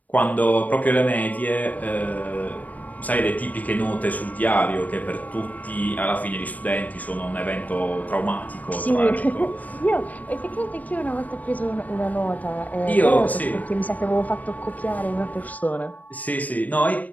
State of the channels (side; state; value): right; late; 0.075 ms